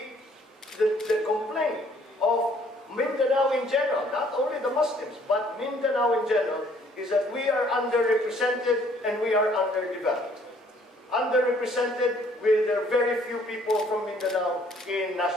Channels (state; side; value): normal; both; correlation 0.61